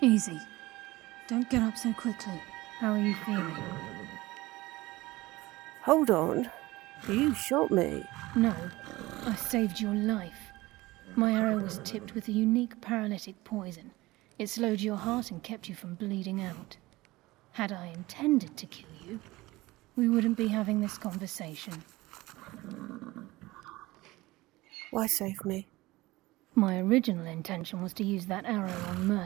Easy. Don't get up so quickly. How are you feeling? Hold on. You shot me. No, I saved your life. My arrow was tipped with a unique paralytic poison. It slowed your heart and kept you from bleeding out. Had I intended to kill you, we wouldn't be having this conversation. Why save me? My original intention was to use that arrow on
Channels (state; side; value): quieter; left; 19.6 dB